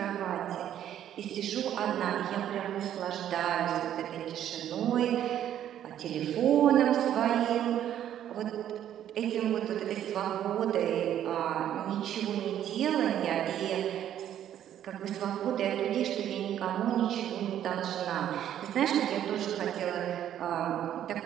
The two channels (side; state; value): left; quieter; 10.8 dB